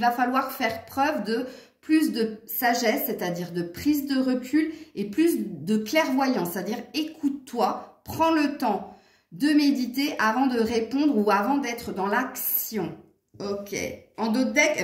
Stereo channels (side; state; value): both; identical; correlation 1.00